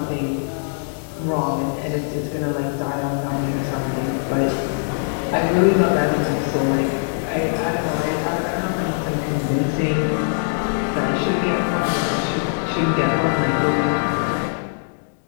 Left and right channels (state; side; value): silent; right; 64 dB below the other